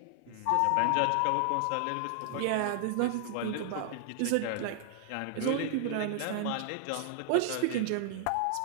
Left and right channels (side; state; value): both; different; correlation 0.00